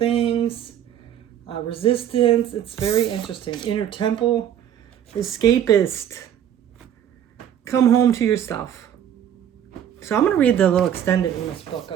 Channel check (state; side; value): quieter; left; 10.0 dB